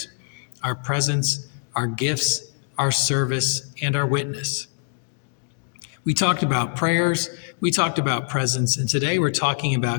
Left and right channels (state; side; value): silent; right; digital silence